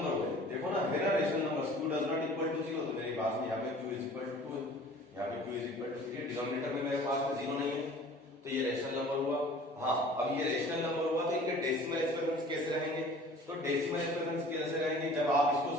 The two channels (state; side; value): normal; both; correlation 0.47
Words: हो गए, देखो ना मेरा rational number q does not equal to 0, तो मेरे पास में यहाँ पे q इज इक्वल टू 2, यहाँ पे q is equal to 3, denominator में मेरे पास में 0 नहीं है, तो ये रेशनल नंबर हुआ। हाँ, अब ये रेशनल नंबर हुआ तो इनके डेसिमल एक्सप्रेशंस कैसे रहेंगे, तो डेसिमल एक्सप्रेशंस कैसे रहेंगे, जब आप इसको